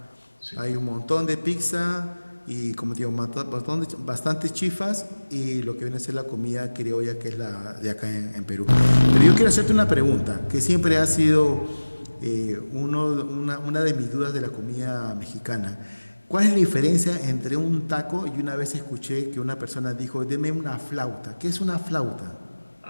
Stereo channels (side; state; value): both; inverted; correlation -1.00